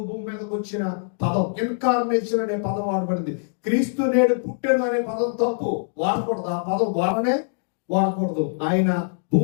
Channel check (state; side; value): silent; right; digital silence